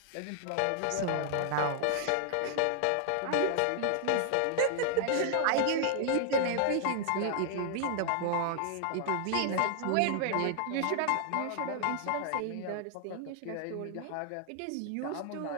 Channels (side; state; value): both; different; correlation 0.00